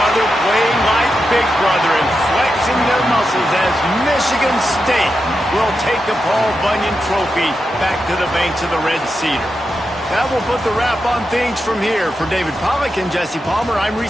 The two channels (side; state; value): both; normal; correlation 0.88